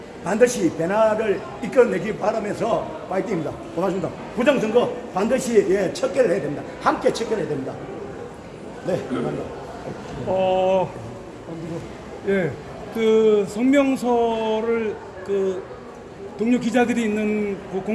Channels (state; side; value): identical; both; correlation 1.00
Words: 반드시 변화를 이끌어내기 바라면서 파이팅입니다. 고맙습니다. 부정선거 반드시 척결을 해야 됩니다. 함께 척결해야 됩니다. 네, 감사합니다. 예, 그 성명서를 그 동료 기자들이 있는 그